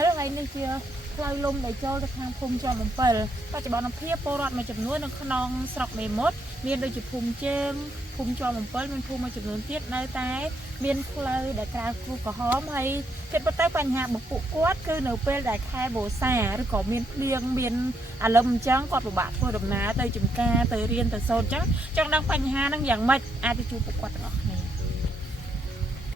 លហើយនេះជាផ្លូវលំដែលចូលទៅខាងភូមិជាំអំពិលបច្ចុប្បន្នភាពពលរដ្ឋមួយចំនួននៅក្នុងស្រុកមេមត់មានដូចជាភូមិជើងភូមិជាំអំពិលមានភូមិមួយចំនួនទៀតនៅតែមានផ្លូវដែលក្រៅគ្រោះក្រហមហើយគិតទៅបញ្ហារបស់ពួកគាត់គឺនៅពេលដែលខែវស្សាឬក៏មានភ្លៀងមានអាលឹមអញ្ចឹងគាត់ពិបាកធ្វើដំណើរទៅចំការទៅរៀនទៅសូត្រអញ្ចឹងចង់ដឹងបញ្ហាហ្នឹងយ៉ាងម៉េចអាចទៅជួបពួកគាត់ទាំងអស់គ្នា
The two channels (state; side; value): normal; both; correlation 0.76